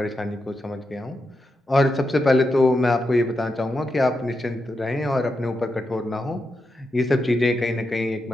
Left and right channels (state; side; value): normal; both; correlation 0.86